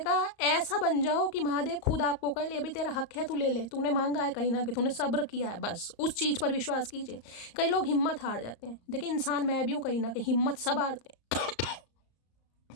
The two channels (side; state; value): right; late; 34 ms